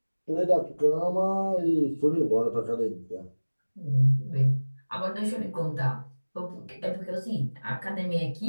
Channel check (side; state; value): both; inverted; correlation -1.00